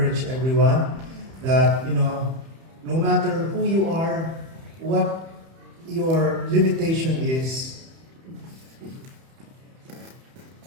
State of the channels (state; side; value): late; left; 31 ms